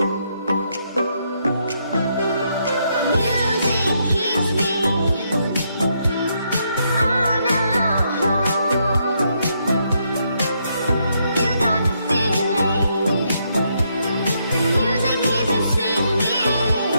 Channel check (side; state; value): both; inverted; correlation -0.77